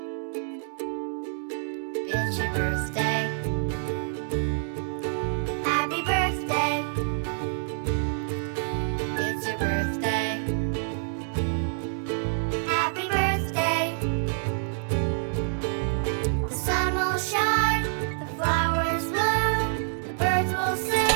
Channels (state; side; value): silent; left; digital silence